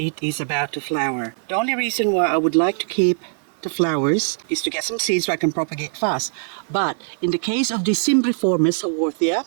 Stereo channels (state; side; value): silent; left; digital silence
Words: is about to flower. The only reason why I would like to keep the flowers is to get some seeds so I can propagate fast. But in the case of the cymbriformis Haworthia,